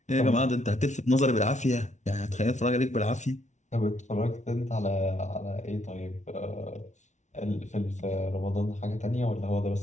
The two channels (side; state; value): right; late; 0.34 ms